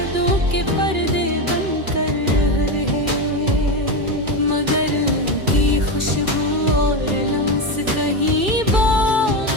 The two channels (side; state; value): left; late; 2.4 ms